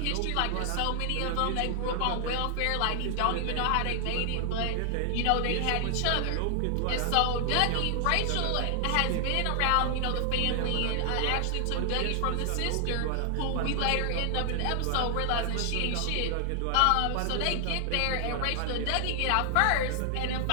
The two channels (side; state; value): both; different; correlation 0.00